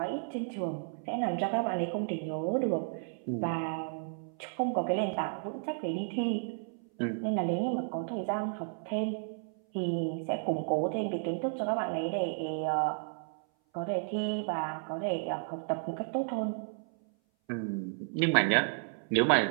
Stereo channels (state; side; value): silent; left; 56 dB below the other